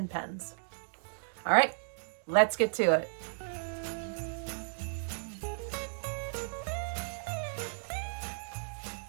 pens. All right, let's get to it.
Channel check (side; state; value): left; silent; digital silence